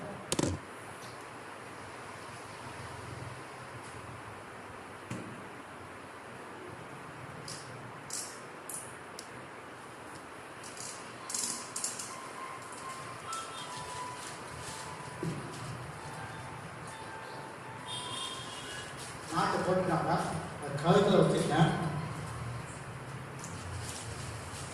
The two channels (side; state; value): both; identical; correlation 1.00